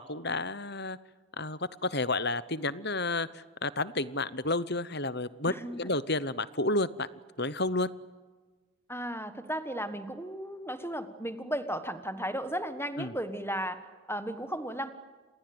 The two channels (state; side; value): normal; both; correlation 0.13